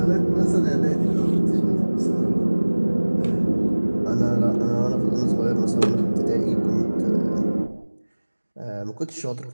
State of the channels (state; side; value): inverted; both; correlation -1.00